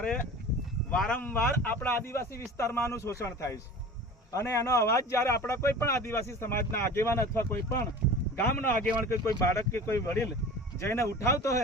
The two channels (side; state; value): both; normal; correlation 0.38